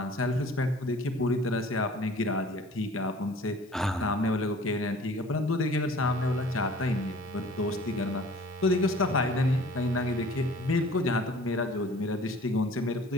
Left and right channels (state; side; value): noise; left; hiss, 30 dB below the sound